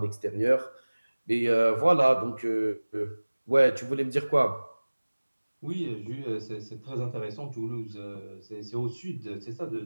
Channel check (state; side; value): inverted; both; correlation -1.00